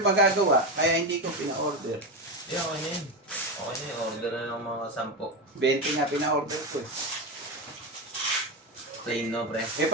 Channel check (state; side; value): normal; both; correlation 0.13